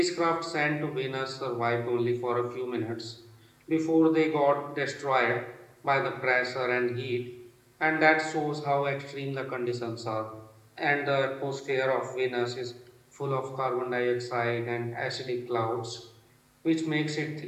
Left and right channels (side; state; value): both; identical; correlation 1.00